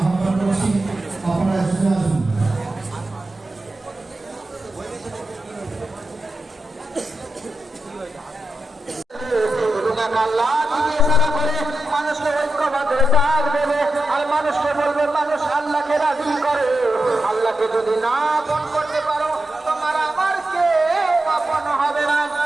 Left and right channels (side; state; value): both; normal; correlation 0.87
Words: করছি, আপনারা এসে আসুন। মানুষকে ঐক্যবদ্ধ ডাক দেবে আর মানুষকে বলবে মানুষ আল্লাহকে রাজি করে। আল্লাহকে যদি না আপন করতে পারো তোমার আমার কেউ আপন হবে না।